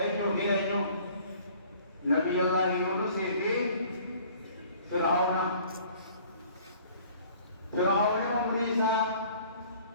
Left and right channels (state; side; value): inverted; both; correlation -0.53